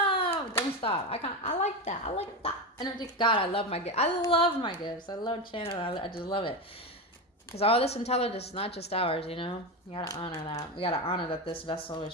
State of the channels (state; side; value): normal; both; correlation 0.17